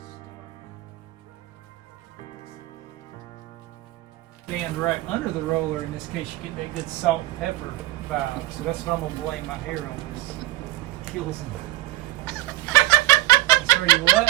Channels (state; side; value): quieter; left; 17.3 dB